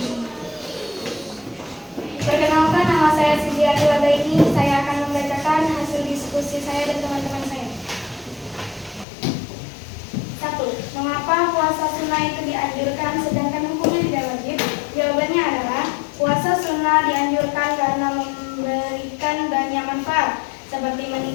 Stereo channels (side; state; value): right; drops out; at 9.1 s